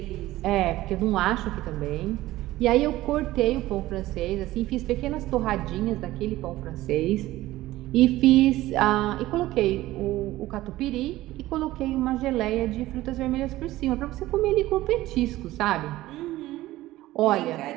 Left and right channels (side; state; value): left; quieter; 16.5 dB